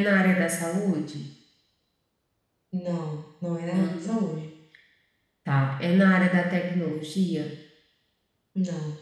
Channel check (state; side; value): identical; both; correlation 1.00